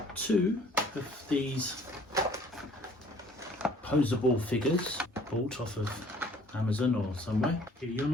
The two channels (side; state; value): both; normal; correlation 0.55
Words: two of these posable figures bought off of Amazon or somewhere. You're